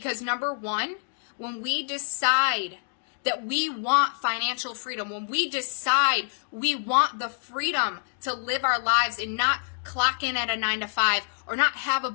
number one, when we decide that we want financial freedom, when we decide we want the freedom to live our lives and not clock in at a 9 to 5 or not have a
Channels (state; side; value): silent; right; digital silence